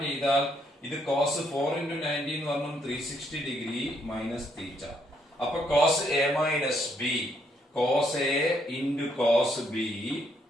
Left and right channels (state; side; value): normal; both; correlation 0.73